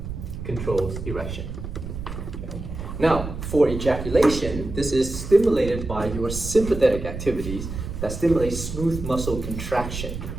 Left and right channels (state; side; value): noise; right; rumble, 7 dB below the sound